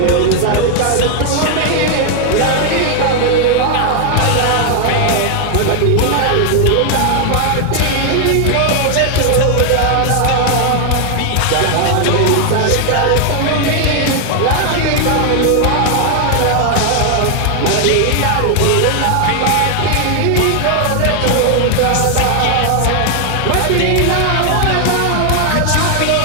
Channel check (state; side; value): different; both; correlation 0.00